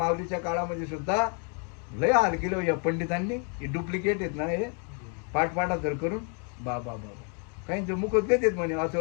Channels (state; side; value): quieter; right; 39.1 dB